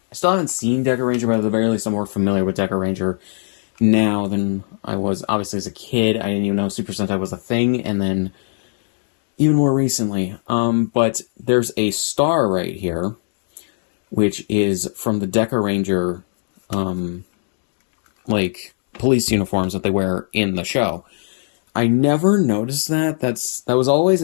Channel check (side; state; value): right; silent; digital silence